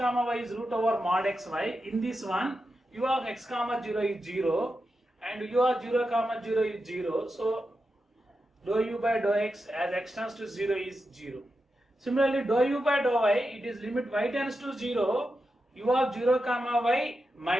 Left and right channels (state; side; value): normal; both; correlation 0.89